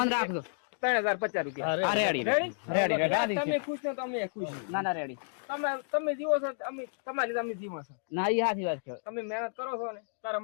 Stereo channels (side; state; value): right; silent; digital silence